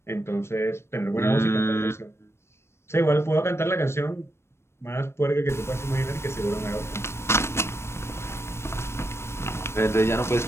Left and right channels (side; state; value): right; late; 0.12 ms